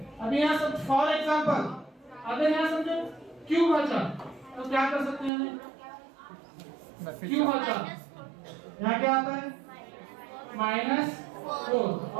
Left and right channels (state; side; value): drops out; left; at 5.3 s